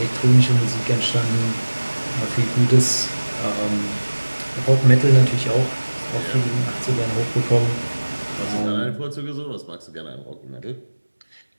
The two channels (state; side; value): inverted; both; correlation -1.00